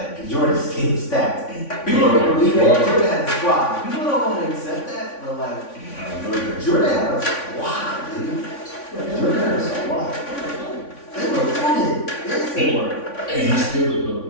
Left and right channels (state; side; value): late; right; 3.5 ms